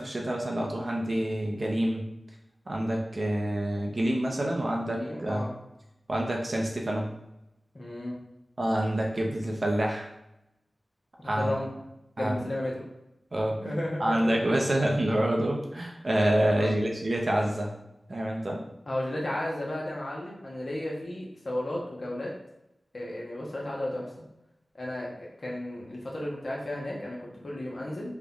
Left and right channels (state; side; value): normal; both; correlation 0.96